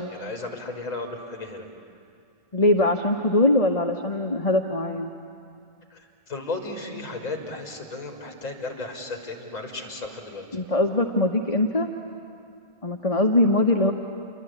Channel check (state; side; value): late; right; 1.7 ms